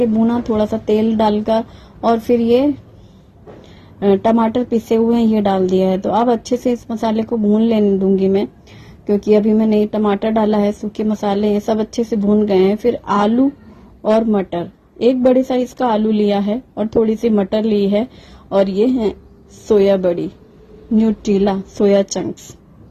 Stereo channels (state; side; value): identical; both; correlation 1.00